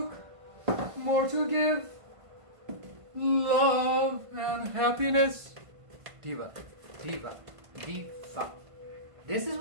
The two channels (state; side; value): late; left; 1.5 ms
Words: More to give. Love and happiness. Diva. This is